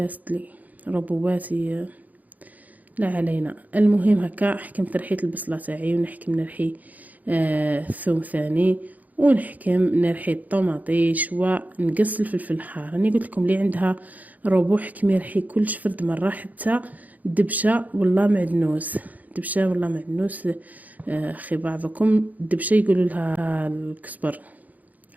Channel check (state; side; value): late; left; 0.079 ms